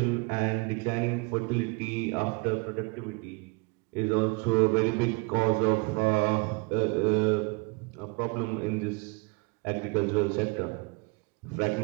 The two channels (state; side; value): quieter; left; 29.4 dB